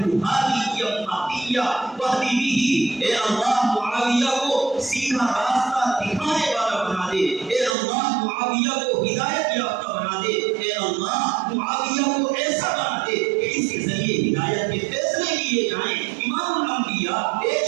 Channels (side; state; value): left; drops out; at 7.8 s